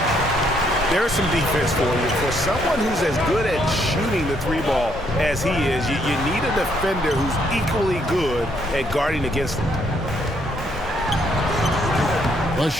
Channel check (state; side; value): normal; both; correlation 0.71